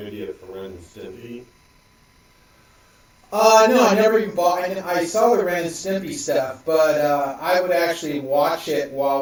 Video for Ren and Stimpy? No, I never even bought. I saw the Ren and Stimpy stuff, but I would actually watch it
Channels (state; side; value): identical; both; correlation 1.00